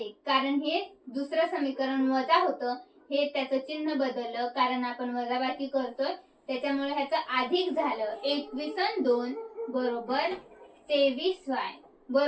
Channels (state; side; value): identical; both; correlation 1.00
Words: कारण हे दुसरं समीकरण वजा होतं, हे त्याचं चिन्ह बदललं कारण आपण वजाबाकी करतोय त्याच्यामुळे ह्याचं अधिक झालं. 21 आणि 2 बरोबर 23y